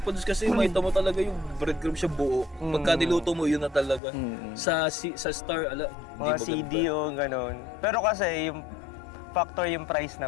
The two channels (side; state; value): right; drops out; at 4.0 s